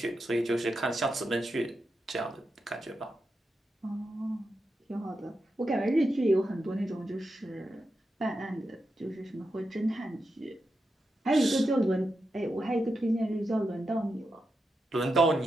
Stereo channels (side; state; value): both; normal; correlation 0.87